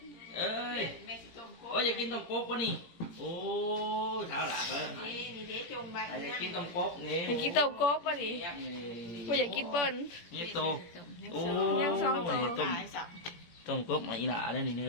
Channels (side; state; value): right; late; 17 ms